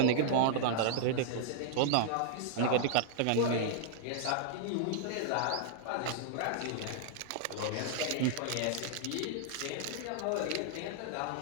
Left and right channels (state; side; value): different; both; correlation -0.01